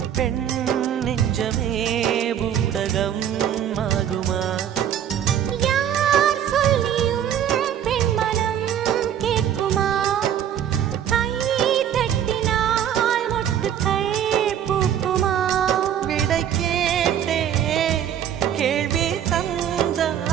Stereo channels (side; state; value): left; quieter; 9.8 dB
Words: பெண் நெஞ்சமே பூடகம் ஆகுமா யார் சொல்லியும் பெண் மனம் கேட்குமா கை தட்டினால் மொட்டுக்கள் பூக்குமா விடை கேட்டே கேள்வி